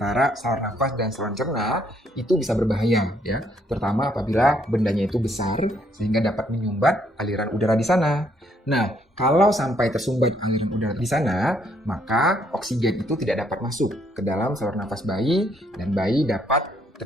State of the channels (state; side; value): normal; both; correlation 0.70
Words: saluran nafas dan saluran cerna, itu bisa berbahaya ya, terutama apabila bendanya itu besar sehingga dapat menyumbat aliran udara di sana. Nah, kalau sampai tersumbat aliran udara di sana, maka oksigen itu tidak dapat masuk ke dalam saluran nafas bayi dan bayi dapat